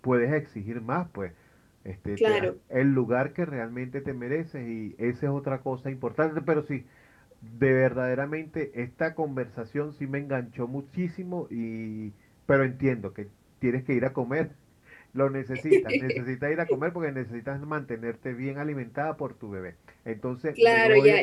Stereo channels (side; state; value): both; identical; correlation 1.00